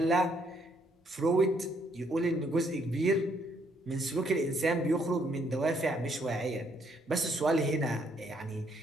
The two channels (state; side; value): normal; both; correlation 0.70